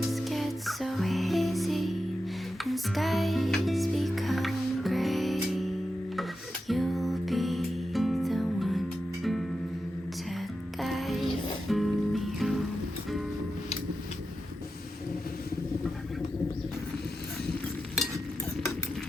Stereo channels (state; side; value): normal; both; correlation 0.90